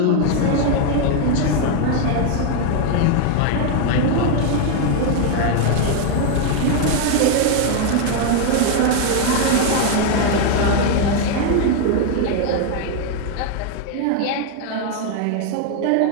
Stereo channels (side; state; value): both; different; correlation 0.00